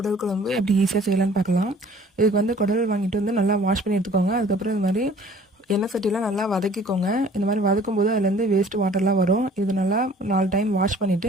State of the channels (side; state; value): both; normal; correlation 0.52